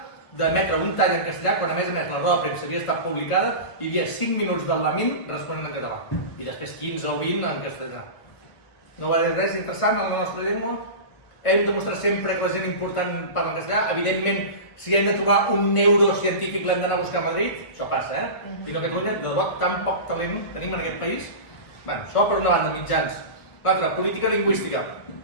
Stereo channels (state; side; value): late; right; 1.5 ms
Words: d'emetre un tall en castellà quan a més la roda de premsa havia estat publicada i hi havia 5 minuts del Lamine responent en català i després 15 o 20 en castellà. No va dir res interessant a la nostra llengua? Hem de mostrar sempre que la gent important parla en castellà. Evidentment, si hem de trobar un neurocientífic l'hem d'anar a buscar a Madrid, això passa, I no a Catalunya, de debò, tan poc talent tenim en aquest país. Bé, això per una banda, mitjans. L'altra, política lingüística.